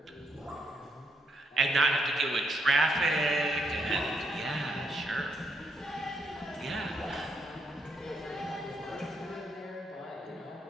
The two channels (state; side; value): normal; both; correlation 0.76